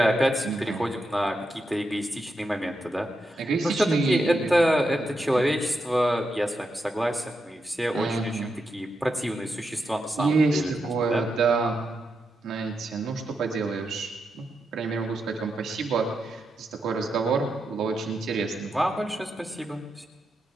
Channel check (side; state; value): both; normal; correlation 0.85